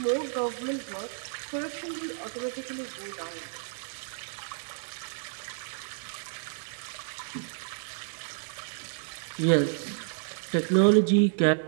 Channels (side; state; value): left; silent; digital silence